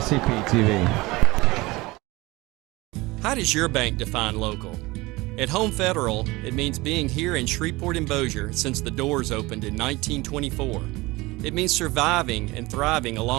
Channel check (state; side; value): quieter; left; 21.6 dB